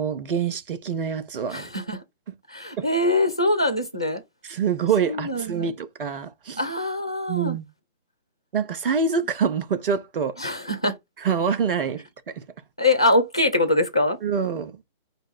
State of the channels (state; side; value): inverted; both; correlation -0.32